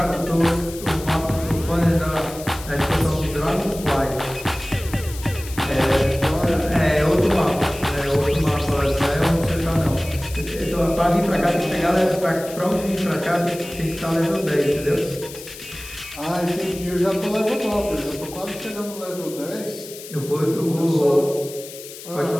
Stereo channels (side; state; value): left; noise; hiss, 14 dB below the sound